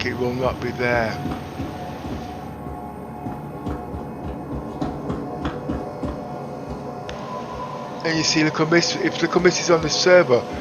it will not be there. And you see, Little Miss, if Little Miss is on the server,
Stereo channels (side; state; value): both; identical; correlation 1.00